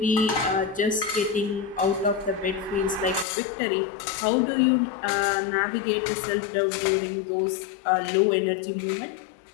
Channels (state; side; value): drops out; right; at 3.2 s